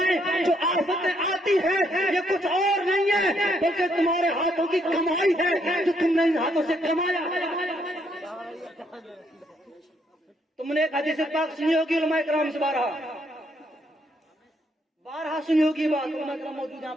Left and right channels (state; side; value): normal; both; correlation 0.72